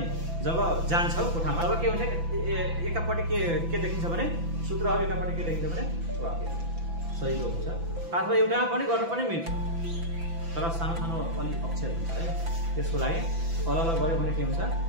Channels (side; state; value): left; late; 6.0 ms